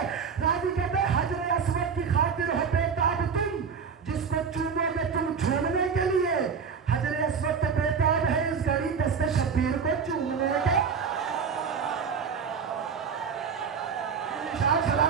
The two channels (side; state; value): left; quieter; 6.1 dB